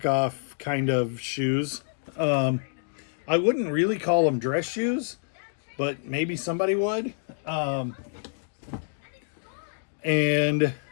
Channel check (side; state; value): right; silent; digital silence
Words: kind of shoes. I wouldn't really call them dress shoes, but maybe somebody would. They're